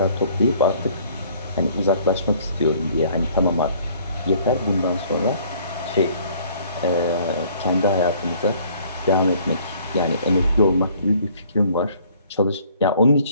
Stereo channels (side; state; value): both; inverted; correlation -0.58